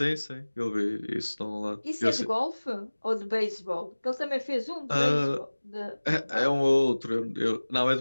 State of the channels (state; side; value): inverted; both; correlation -1.00